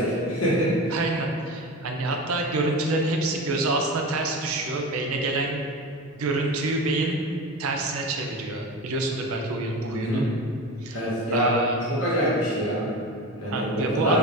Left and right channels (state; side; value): normal; both; correlation 0.27